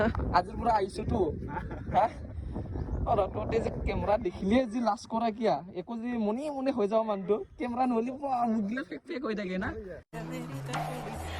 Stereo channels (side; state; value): both; identical; correlation 1.00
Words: আজিৰ পৰা আহিছোঁতো। তহঁতে যে কেমেৰা দেখিলে যি লাজ কৰা কিয়া, একো যে মনে হৈ যাওঁ মানুহটো, কেমেৰা নহ'লে মুখগিলা ফেক হৈ থাকে না।